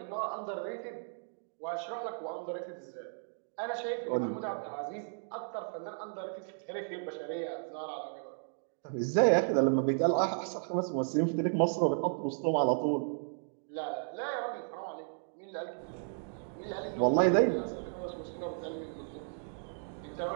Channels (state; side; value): silent; left; digital silence